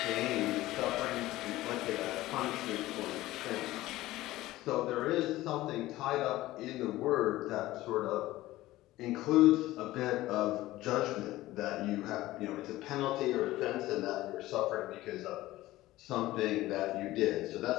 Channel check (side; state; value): right; quieter; 16.9 dB